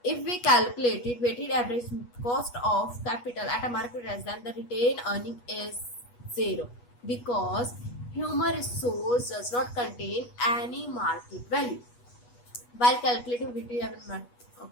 If we calculate it, weighted average cost of capital at a market price, then the retained earning is 0 because human resource does not contain any market value. While calculating weighted average,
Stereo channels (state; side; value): late; right; 8.3 ms